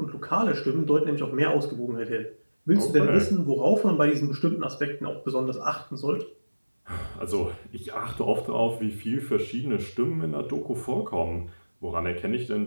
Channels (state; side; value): inverted; both; correlation -1.00